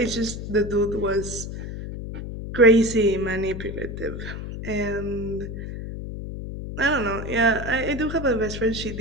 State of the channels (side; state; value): left; noise; hum, 7 dB below the sound